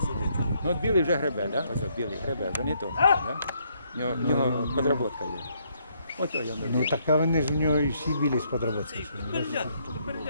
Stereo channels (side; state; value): both; inverted; correlation -0.72